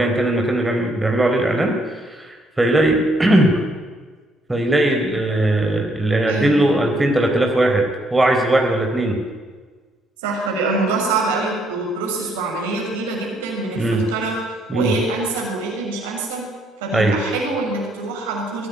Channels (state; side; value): normal; both; correlation 0.71